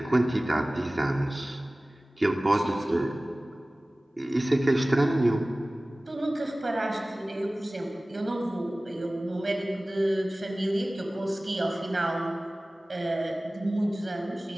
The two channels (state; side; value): normal; both; correlation 0.98